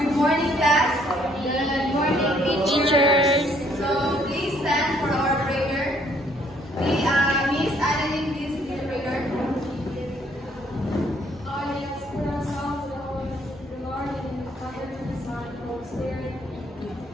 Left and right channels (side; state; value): both; normal; correlation 0.65